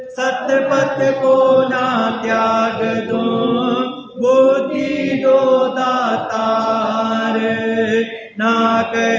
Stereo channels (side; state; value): both; identical; correlation 1.00